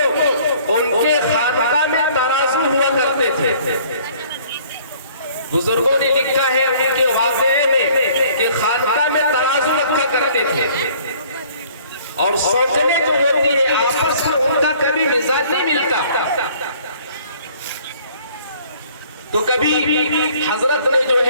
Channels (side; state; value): both; inverted; correlation -0.56